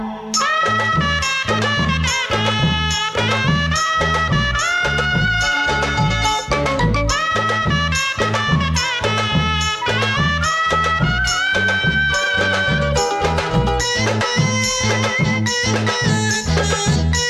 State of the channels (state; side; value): identical; both; correlation 1.00